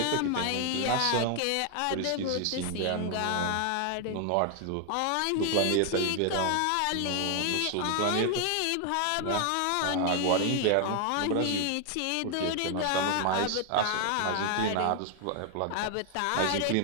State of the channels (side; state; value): both; different; correlation 0.00